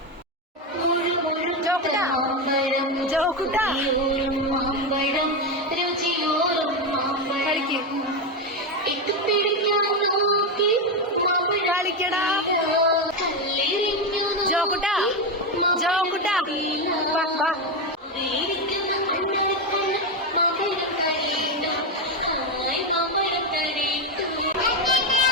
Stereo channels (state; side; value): normal; both; correlation 0.10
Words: കളിക്കടാ ജോക്കുട്ടാ, ജോക്കുട്ടാ